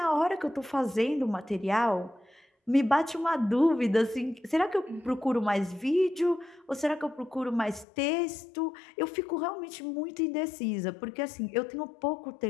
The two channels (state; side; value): drops out; right; at 7.9 s